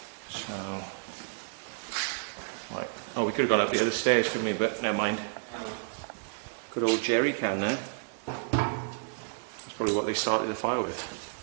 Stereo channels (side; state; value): left; silent; digital silence